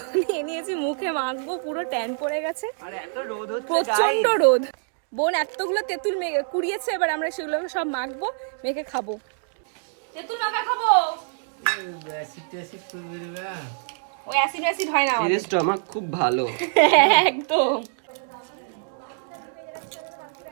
নিয়ে নিয়েছি, মুখে মাখবো, পুরো ট্যান পড়ে গেছে, প্রচন্ড রোদ। বোন এতগুলো তেঁতুল কুড়িয়েছে, এবার আমরা সেগুলো সব মাখবো, মেখে খাবো। তেঁতুল মাখা খাবো। ওই অ্যাসিড হয় না আমাদের। স্টমাক খুব ভালো। একদম।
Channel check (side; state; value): left; silent; digital silence